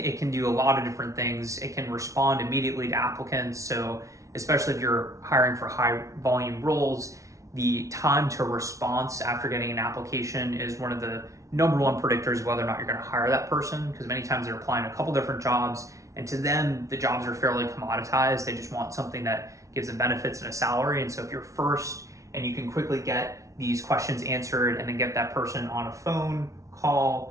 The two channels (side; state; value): left; late; 0.15 ms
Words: can do a lot of different things. It can respond immediately to applicants. So especially if you're hiring for high volume roles, the time to response after getting an application is one of the number one predictors of whether or not you're going to hire that person, because many times they're applying a couple different jobs, and to them, the jobs are fairly commoditized. They just want something that gives them benefits and a salary. And so if you're first and you can quickly get these questions answered and then get that person on a phone